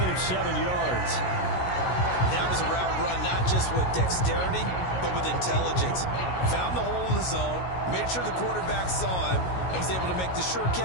of 7 yards. That was a route run not just with dexterity, but with intelligence. Found the hole in the zone, made sure the quarterback saw him, and was able to make the sure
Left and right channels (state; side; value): late; right; 16 ms